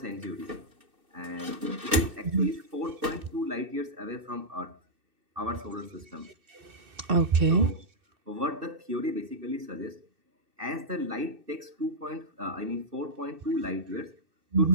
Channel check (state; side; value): late; left; 2.6 ms